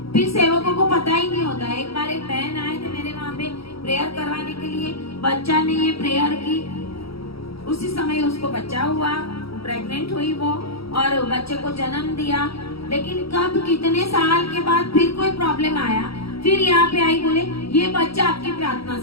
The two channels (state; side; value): late; right; 0.76 ms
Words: फिर सेवकों को पता ही नहीं होता। एक बार एक बहन आए थे मेरे वहाँ पे प्रेयर करवाने के लिए, बच्चा ने ये प्रेयर की, उसी समय उसको बच्चा हुआ, प्रेग्नेंट हुई वो और बच्चे को जन्म दिया। लेकिन कब कितने साल के बाद फिर कोई प्रॉब्लम आया, फिर यहाँ पे आई, बोले ये बच्चा आपकी प्रार्थना